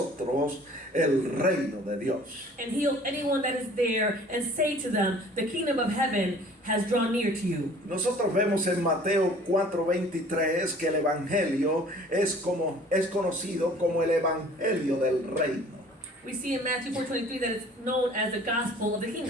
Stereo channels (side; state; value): both; normal; correlation 0.50